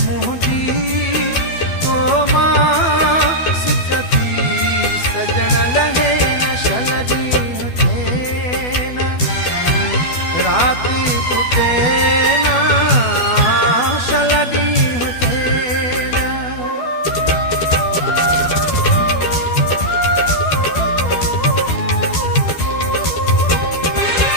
मोहदी ओ माँ सिकती सजन लगे न सलडी होते ना रात टूटे ना सलडी होते ना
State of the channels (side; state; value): right; late; 12 ms